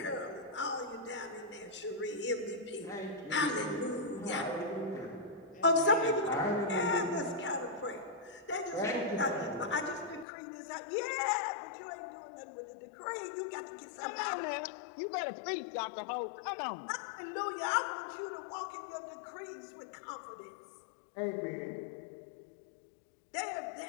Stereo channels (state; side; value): drops out; right; at 10.2 s